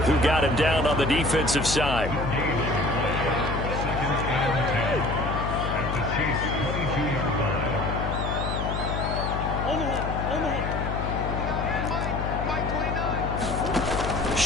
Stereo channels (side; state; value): left; noise; hum, 3 dB below the sound